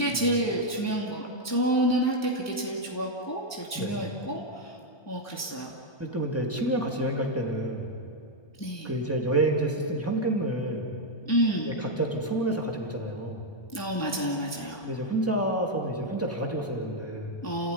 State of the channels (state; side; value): late; right; 1.2 ms